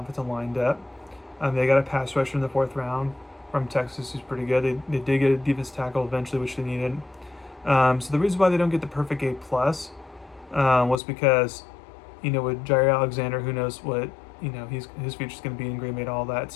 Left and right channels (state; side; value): drops out; right; at 11.0 s